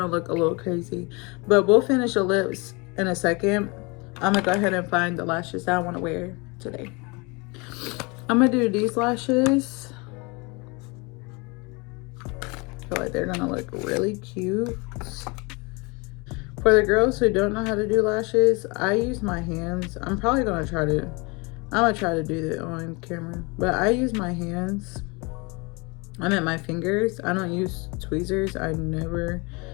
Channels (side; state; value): right; quieter; 28.1 dB